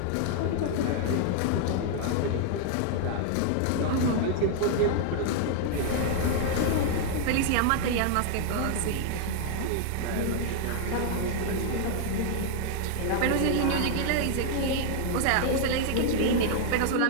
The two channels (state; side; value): different; both; correlation 0.00